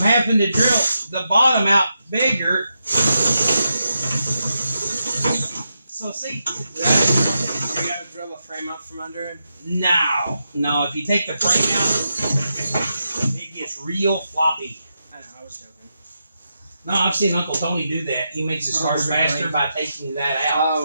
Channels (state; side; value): inverted; both; correlation -0.86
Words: having to drill the bottom out bigger. So see, You gotta drill a frame out from under him. no, if you take the frame out, it gets real floppy. I know, I was joking. No, I've seen Uncle Tony do that. He makes his cars faster by taking that out.